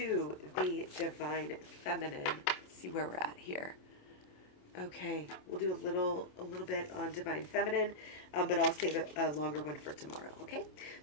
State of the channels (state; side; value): late; right; 27 ms